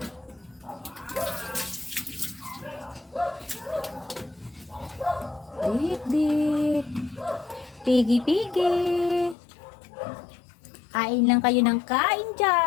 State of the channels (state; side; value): drops out; right; at 9.3 s